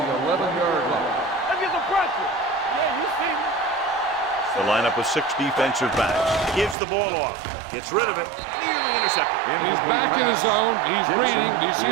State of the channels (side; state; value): left; drops out; at 6.8 s